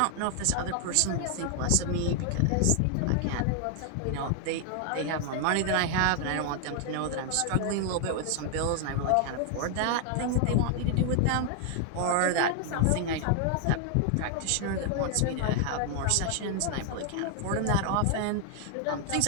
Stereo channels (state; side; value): different; both; correlation 0.00